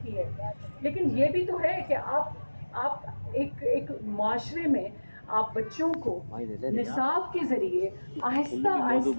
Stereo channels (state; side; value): inverted; both; correlation -1.00